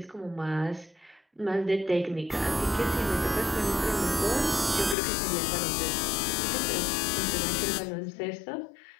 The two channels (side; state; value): right; drops out; at 5.0 s